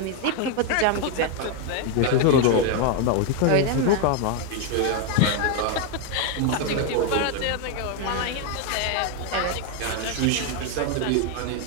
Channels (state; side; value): different; both; correlation 0.01